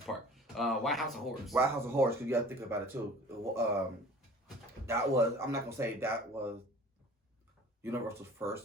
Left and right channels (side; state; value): both; normal; correlation 0.46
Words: Park. Why House of Horrors? Why House of Horrors? Because you got to think about it too. I'm not gonna say that was Universal's